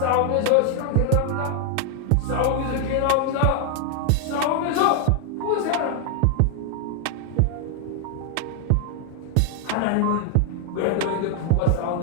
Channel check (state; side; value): different; both; correlation 0.00